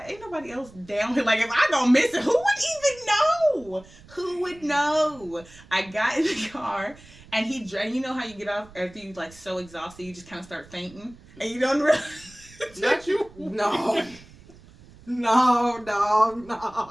ain't nobody else down here. If I go missing, who would even know? Who would know? I got in the car, and he drank. You know how you get off after you so exhausted, you just kind of start fainting, and you don't realize. Not you? No. You know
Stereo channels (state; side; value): noise; right; rumble, 23 dB below the sound